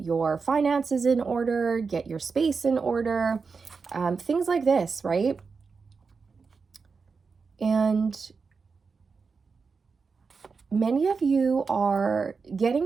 finances in order, get your space in order, things like this, right? And many of you are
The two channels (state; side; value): quieter; left; 5.0 dB